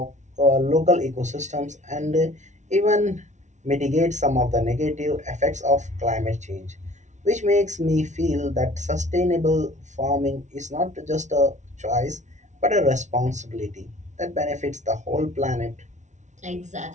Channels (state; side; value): late; left; 0.35 ms